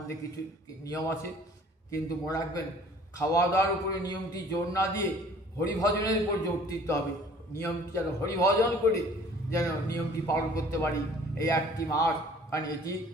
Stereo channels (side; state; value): both; normal; correlation 0.52